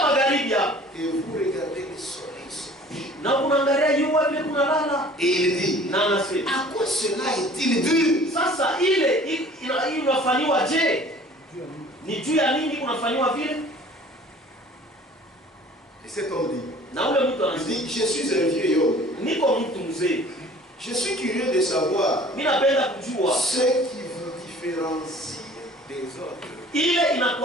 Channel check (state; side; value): normal; both; correlation 0.49